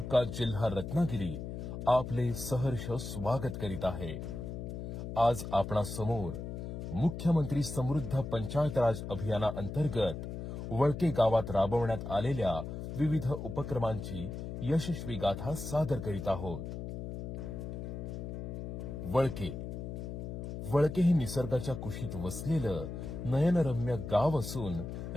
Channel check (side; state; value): left; noise; hum, 7 dB below the sound